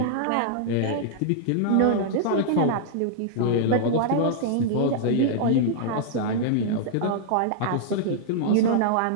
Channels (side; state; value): both; different; correlation -0.01